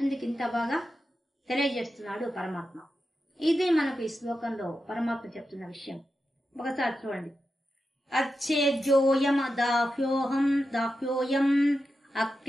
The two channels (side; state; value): both; normal; correlation 0.90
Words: ఇంత బాగా తెలియజేస్తున్నాడు పరమాత్మ. ఇది మనకు ఈ శ్లోకంలో పరమాత్మ చెప్తున్న విషయం. ఒకసారి చూడండి. అచ్చేద్యోయం దాహ్యోయం